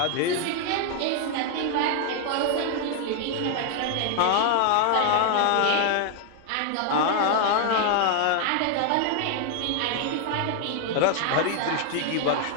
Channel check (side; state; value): both; different; correlation 0.00